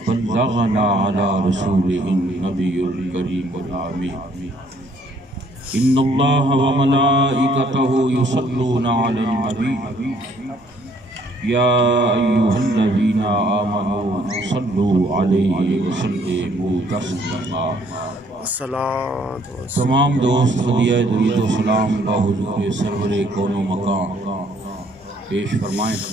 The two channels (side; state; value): both; normal; correlation 0.64